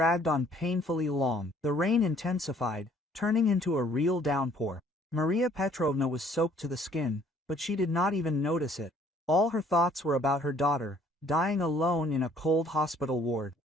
on painfully long. The rain intensified, turning into a real downpour. Maria Petrovna was soaked to the skin, but she did not even notice it. All her thoughts were about her daughter, dying alone in a cold hospital ward.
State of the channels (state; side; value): normal; both; correlation 0.60